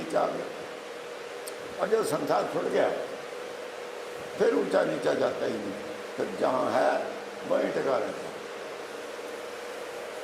आ गया। और जब संसार छूट गया, फिर ऊंचा नीचा जाता ही नहीं, फिर जहाँ है वहीं टिका रहता।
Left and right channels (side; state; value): both; identical; correlation 1.00